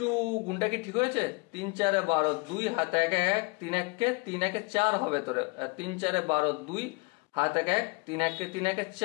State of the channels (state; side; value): quieter; right; 28.6 dB